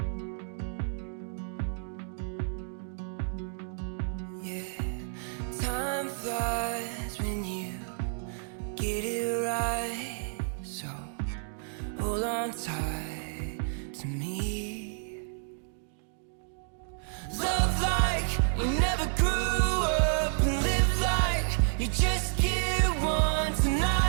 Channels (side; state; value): left; silent; digital silence